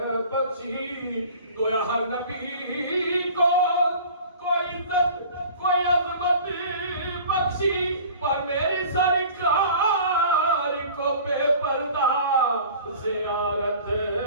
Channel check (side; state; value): both; inverted; correlation -0.44